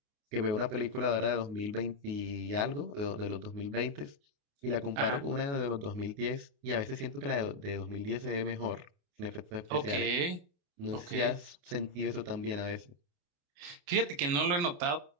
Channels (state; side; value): late; left; 29 ms